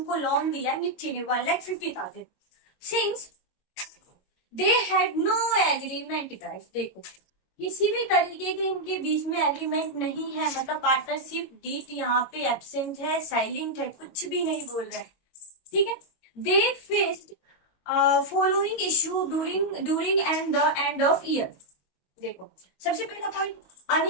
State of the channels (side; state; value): right; late; 22 ms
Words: को लोन दिया मिथि ने 1,50,000। Since they had no agreement guys, देखो किसी भी तरीके के इनके बीच में एग्रीमेंट नहीं है, मतलब पार्टनरशिप डीड यहाँ पे एब्सेंट है, साइलेंट है, कुछ भी नहीं बोल रहे। ठीक है। They faced following issue during and the end of year. देखो सबसे पहला point,